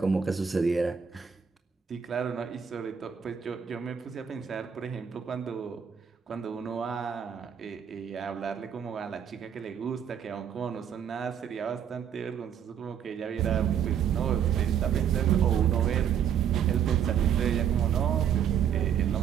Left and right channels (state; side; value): quieter; left; 8.3 dB